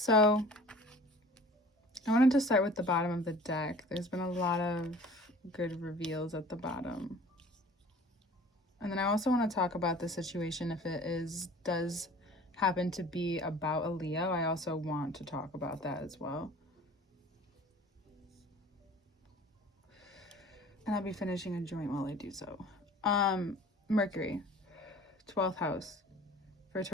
I wanted to start with the bottom of the deck. There's been a lot of good reveals at the bottom. And then I also want to talk about the situation if it does happen to be about a Leo. I also want to talk about that as well. And I'll be finishing a joint while I do so. Mercury, 12th house for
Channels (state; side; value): normal; both; correlation 0.46